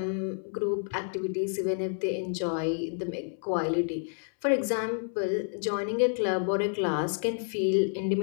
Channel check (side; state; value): right; silent; 58 dB below the other